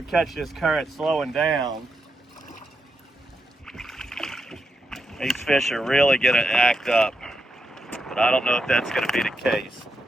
catch this current slowing down, these fish are really gonna act up. But I don't know if that's gonna be the case.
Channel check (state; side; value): normal; both; correlation 0.83